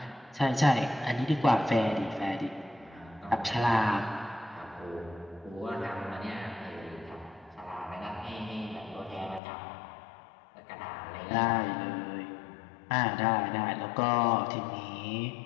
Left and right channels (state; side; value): drops out; right; at 9.4 s